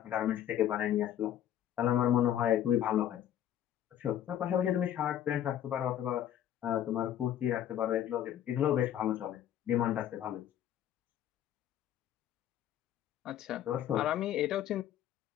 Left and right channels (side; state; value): right; quieter; 11.0 dB